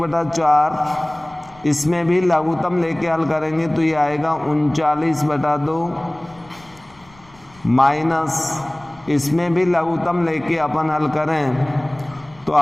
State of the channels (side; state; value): left; noise; rumble, 26 dB below the sound